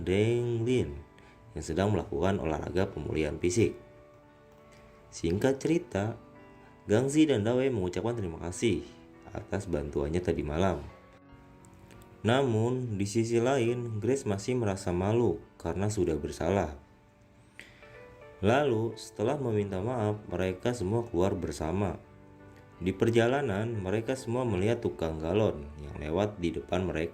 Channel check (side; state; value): both; identical; correlation 1.00